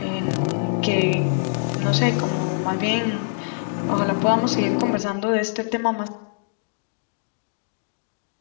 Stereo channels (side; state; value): right; silent; digital silence